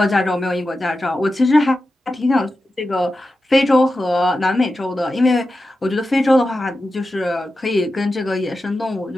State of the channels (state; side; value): normal; both; correlation 0.92